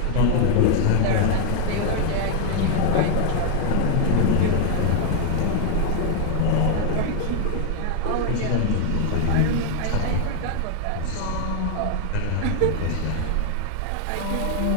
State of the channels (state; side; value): different; both; correlation 0.00